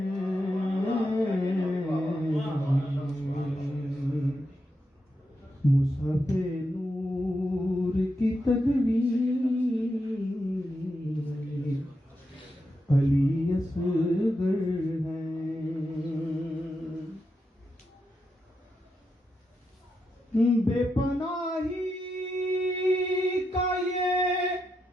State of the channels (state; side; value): normal; both; correlation 0.85